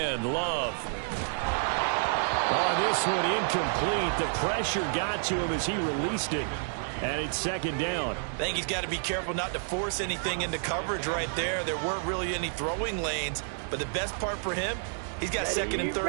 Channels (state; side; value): silent; left; digital silence